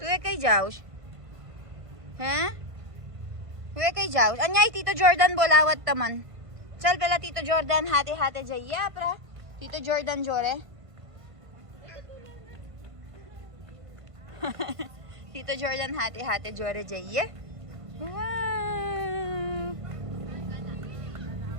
kay Jaus. Ha? Tuwe kay Jaus. Anyay, Tito Jordan bolawat taman. Chal pala Tito Jordan hate jaya pra. Tito Jordan jore. Tito Jordan hate jore jaya. Wow.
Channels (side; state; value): left; late; 1.5 ms